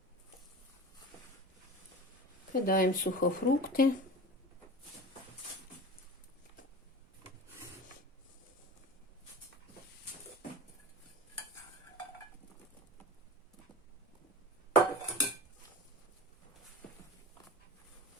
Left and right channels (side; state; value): both; normal; correlation 0.33